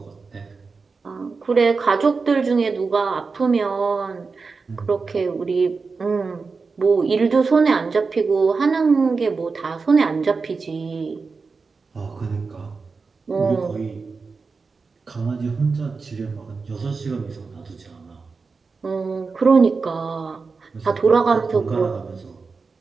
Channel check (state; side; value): quieter; left; 4.6 dB